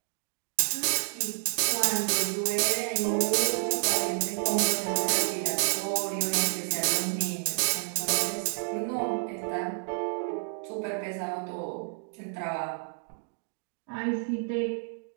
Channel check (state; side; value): silent; left; 58 dB below the other